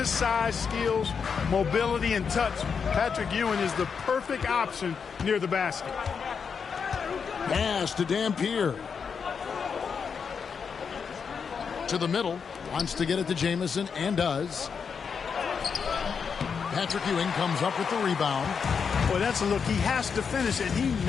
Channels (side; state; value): right; quieter; 6.2 dB